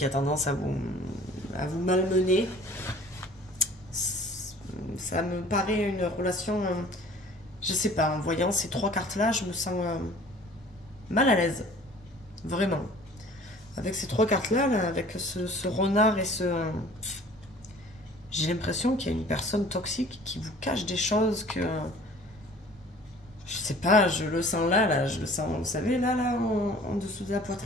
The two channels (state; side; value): normal; both; correlation 0.49